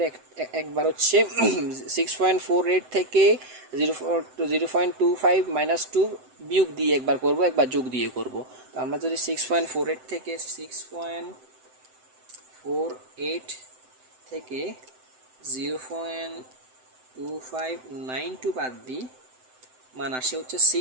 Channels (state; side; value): late; left; 7.8 ms